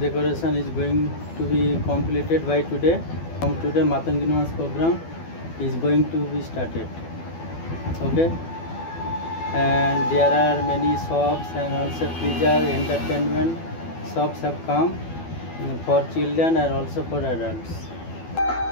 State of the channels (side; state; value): right; late; 12 ms